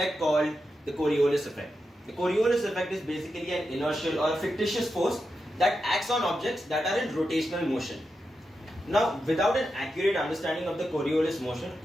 called the Coriolis effect. The Coriolis effect is basically an inertial or a fictitious force that acts on objects that are in rotational motion. Now, without an accurate understanding of the Coriolis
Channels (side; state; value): both; normal; correlation 0.88